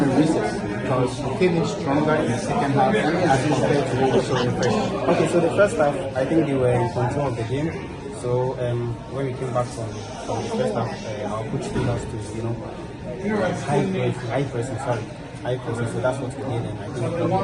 recess? Because you came in stronger in the second half as compared to what we saw in the first half. Okay, so the first half, I think they were in control of the game. So when we came back from the first half, our coach told us to, high pressing. So that's what we did, and I think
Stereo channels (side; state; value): both; identical; correlation 1.00